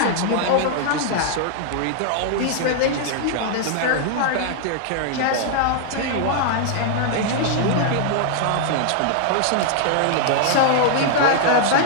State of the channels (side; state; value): both; different; correlation -0.01